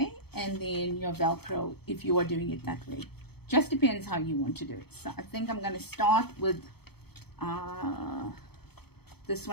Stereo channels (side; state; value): right; late; 0.96 ms